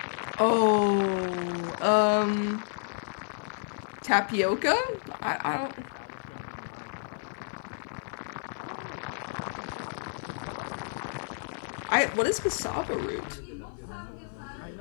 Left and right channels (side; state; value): right; silent; digital silence